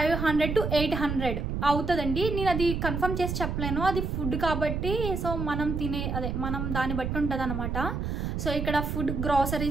to 800 అవుతుందండి. నేను అది కన్ఫర్మ్ చేసి చెప్పలేను, అది ఫుడ్ కాబట్టి. సో మనం దాన్ని బట్టి ఉంటుంది అనమాట. సో ఇక్కడ ఫుడ్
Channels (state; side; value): noise; right; rumble, 2 dB below the sound